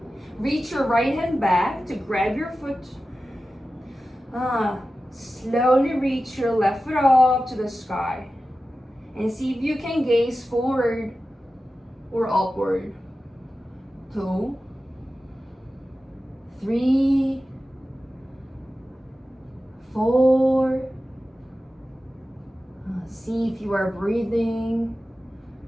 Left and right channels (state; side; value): normal; both; correlation 0.94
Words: Reach your right hand back to grab your foot. Slowly reach your left foot up to the sky. And see if you can gaze forward or upward. 2, 3, 4. See if you are breathing.